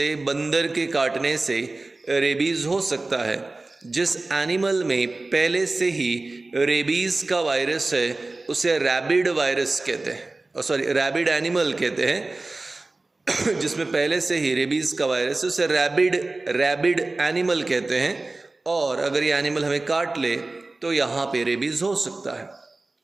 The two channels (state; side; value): quieter; left; 3.2 dB